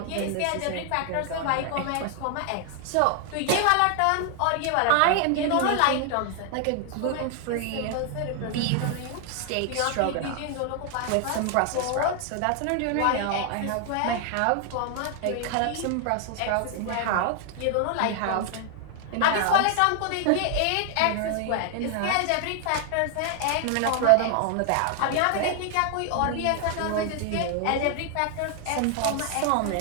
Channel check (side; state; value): both; different; correlation 0.00